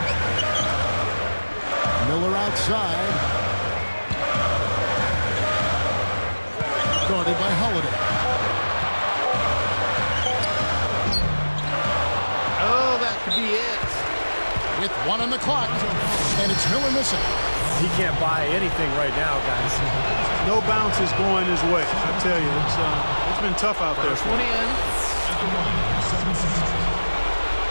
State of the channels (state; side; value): inverted; both; correlation -1.00